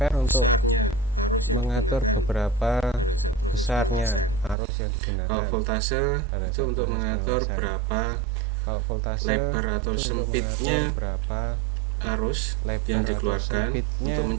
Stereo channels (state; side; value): drops out; left; at 4.5 s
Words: untuk mengatur beberapa besarnya arus yang digunakan pada saat proses pengelasan. Kalau voltase itu untuk mengatur berapa lebar atau sempitnya